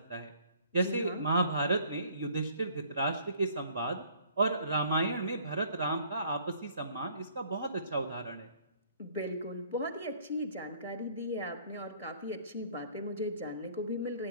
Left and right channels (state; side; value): inverted; both; correlation -0.58